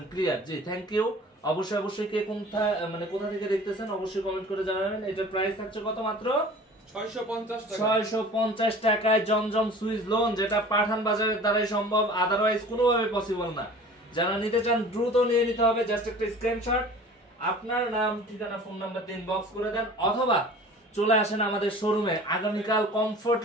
ক্লিয়ার? জি, থ্যাংক ইউ। অবশ্যই কে কোথা থেকে দেখতেছেন অবশ্যই কমেন্ট করে জানাবেন। এটার প্রাইস থাকছে কত? মাত্র 650 টাকায় জমজম সুইচ লোন, যেটা পাঠান বাজারের দ্বারাই সম্ভব, আদারওয়াইজ কোনোভাবে পসিবল না। যারা নিতে চান দ্রুত নিয়ে নিতে হবে। জাস্ট একটা স্ক্রিনশট, আপনার নাম, ঠিকানা, ফোন নাম্বার দিয়ে ইনবক্স করে দেন, অথবা চলে আসেন আমাদের শোরুমে। আগামীকাল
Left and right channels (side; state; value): both; normal; correlation 0.43